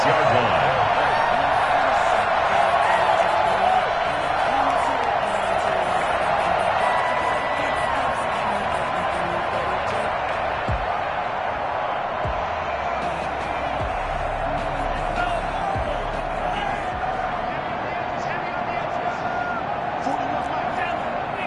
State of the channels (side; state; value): both; identical; correlation 1.00